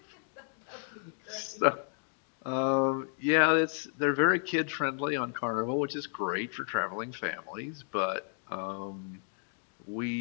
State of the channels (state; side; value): silent; right; 56 dB below the other